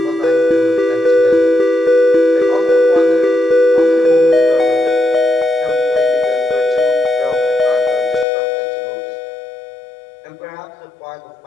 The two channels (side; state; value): right; drops out; at 8.2 s